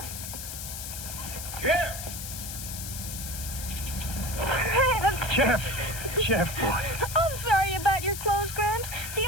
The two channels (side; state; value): left; noise; hiss, 7 dB below the sound